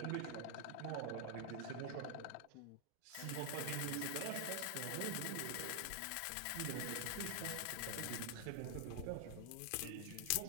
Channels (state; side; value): different; both; correlation 0.00